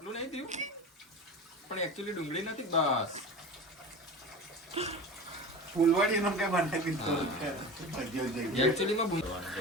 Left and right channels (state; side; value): normal; both; correlation 0.32